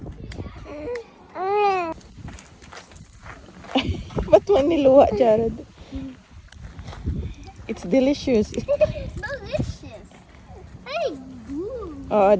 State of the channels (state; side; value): identical; both; correlation 1.00